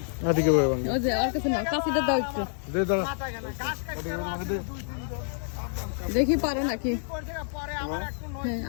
ওই যে ওর কাছে নাও, কাছিটা দাও একটু দেখি পারো নাকি। হ্যাঁ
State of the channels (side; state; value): right; silent; digital silence